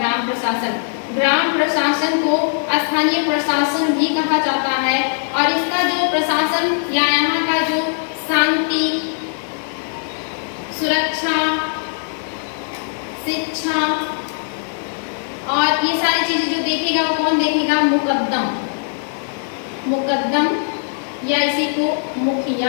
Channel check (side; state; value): right; silent; 66 dB below the other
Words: प्रशासन। ग्राम प्रशासन को स्थानीय प्रशासन भी कहा जाता है, और इसका जो प्रशासन या यहाँ का जो शांति, सुरक्षा, शिक्षा और ये सारी चीजें जो देखेगा वो कौन देखेगा, मुकद्दम। मुकद्दम या इसी को